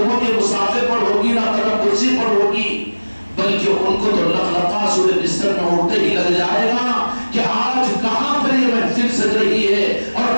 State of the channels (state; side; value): inverted; both; correlation -1.00